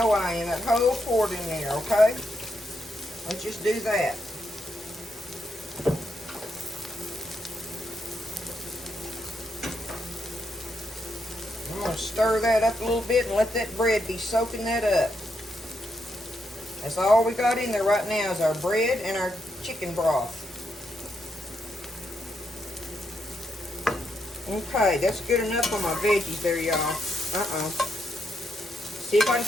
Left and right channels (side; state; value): both; normal; correlation 0.80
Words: I am, that whole quart in there, okay? Let's just do that. gonna stir that up a little bit and let that bread be soaking that up. That's all we got in there right now is our bread and our chicken broth. Okay, that's good enough on my veggies there, y'all. See if I can